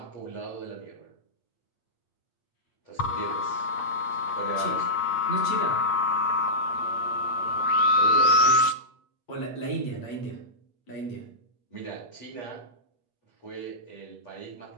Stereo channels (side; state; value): right; late; 8.4 ms